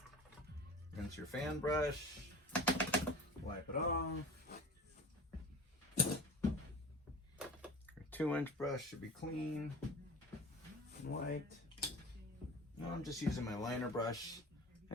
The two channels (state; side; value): normal; both; correlation 0.36